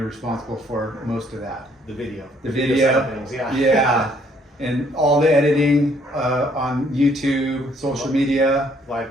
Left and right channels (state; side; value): normal; both; correlation 0.65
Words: responsible for most of that. The video Video. things, Yeah. And all the editing on YouTube, social media,